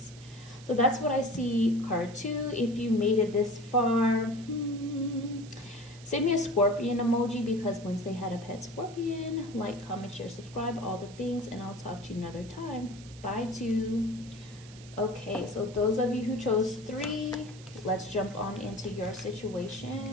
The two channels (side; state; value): right; noise; hiss, 20 dB below the sound